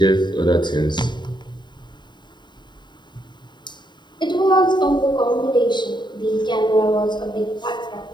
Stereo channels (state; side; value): late; right; 0.22 ms